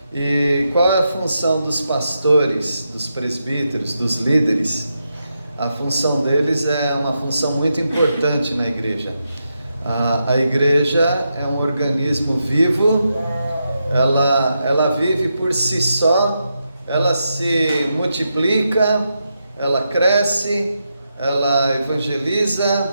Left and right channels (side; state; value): both; inverted; correlation -0.85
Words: E qual é a função dos pastores, dos presbíteros, dos líderes? A função deles é uma função muito importante na igreja. A igreja é um organismo vivo, ela vive por si só, ela se multiplica, ela cresce, ela evangeliza,